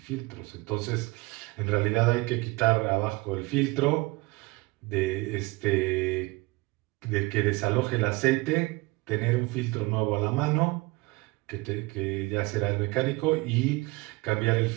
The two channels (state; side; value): quieter; left; 23.8 dB